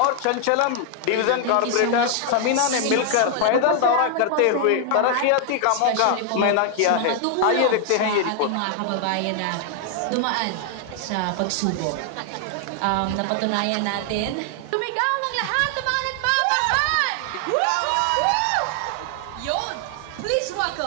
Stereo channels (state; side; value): different; both; correlation 0.00